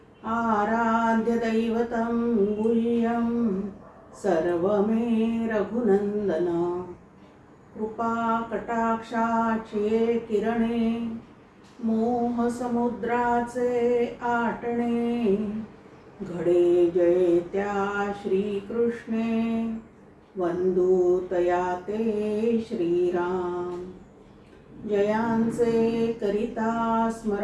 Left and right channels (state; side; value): identical; both; correlation 1.00